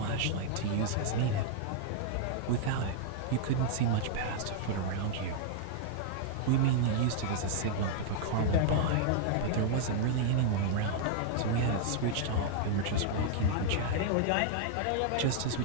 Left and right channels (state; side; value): different; both; correlation -0.01